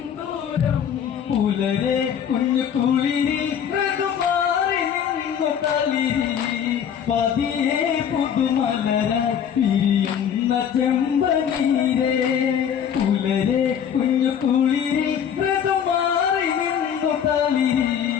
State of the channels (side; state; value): right; quieter; 8.4 dB